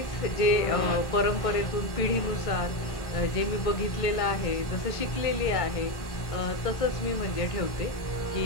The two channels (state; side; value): late; right; 1.5 ms